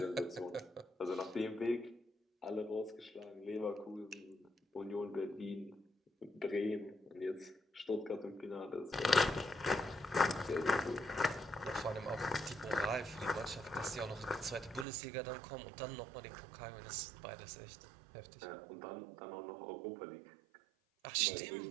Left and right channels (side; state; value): left; drops out; at 14.9 s